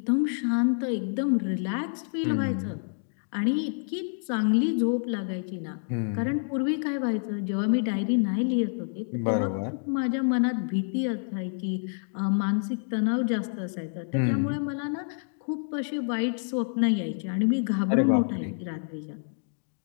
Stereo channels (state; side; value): silent; right; digital silence